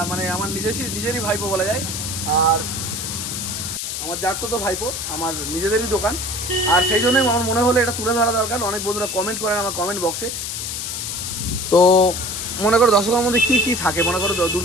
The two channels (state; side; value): noise; left; hiss, 4 dB below the sound